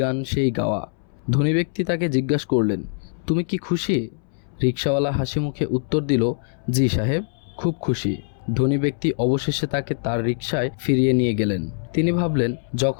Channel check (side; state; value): right; silent; 63 dB below the other